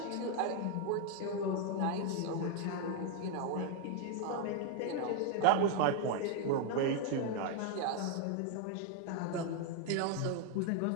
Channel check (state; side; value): different; both; correlation 0.01